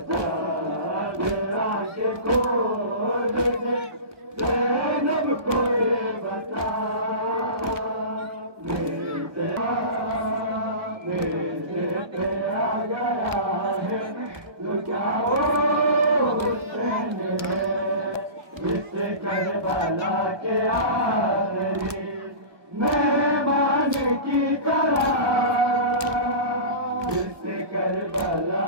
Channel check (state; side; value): late; left; 1.2 ms